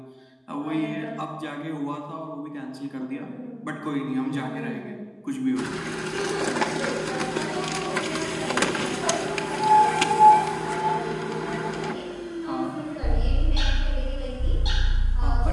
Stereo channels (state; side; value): identical; both; correlation 1.00